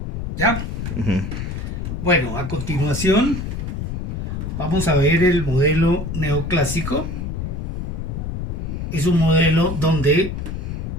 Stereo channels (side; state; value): left; noise; rumble, 4 dB below the sound